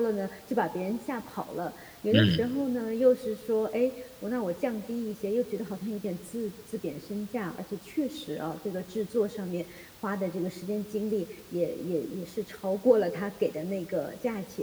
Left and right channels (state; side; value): identical; both; correlation 1.00